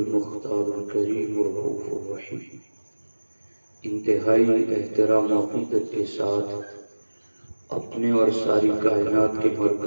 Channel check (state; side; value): inverted; both; correlation -1.00